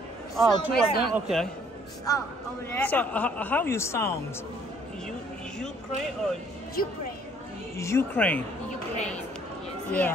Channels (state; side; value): normal; both; correlation 0.61